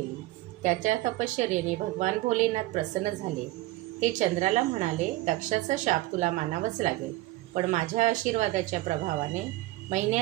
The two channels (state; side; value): quieter; left; 18.1 dB